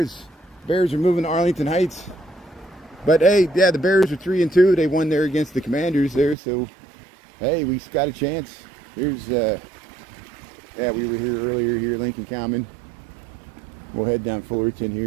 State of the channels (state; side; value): drops out; left; at 6.4 s